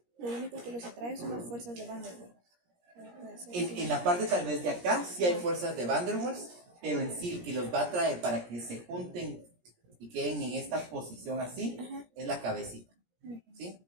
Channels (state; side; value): late; left; 17 ms